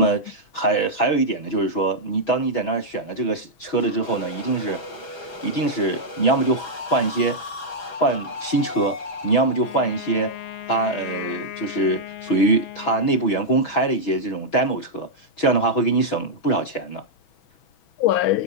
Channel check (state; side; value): late; right; 6.2 ms